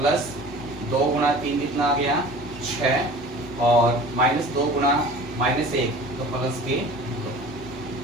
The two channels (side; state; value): both; normal; correlation 0.42